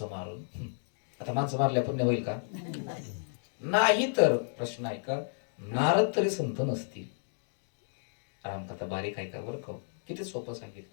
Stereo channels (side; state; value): right; silent; digital silence